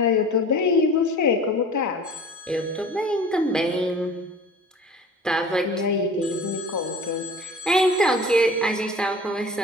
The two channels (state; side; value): normal; both; correlation 0.41